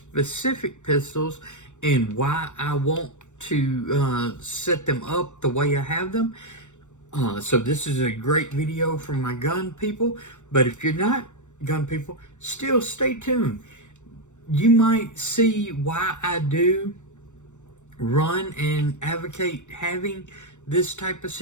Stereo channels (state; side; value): late; right; 0.84 ms